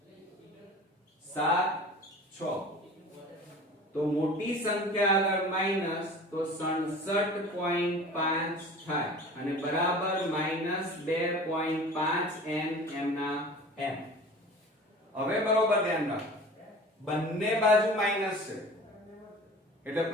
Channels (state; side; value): normal; both; correlation 0.40